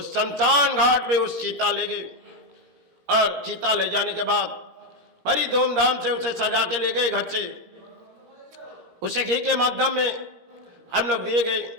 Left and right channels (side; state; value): left; late; 17 ms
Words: शमशान घाट पे उस चीता ले गए और चीता ले जाने के बाद बड़ी धूमधाम से उसे सजा के ले गए घर से। उसे घी के माध्यम में हम लोग दिए गए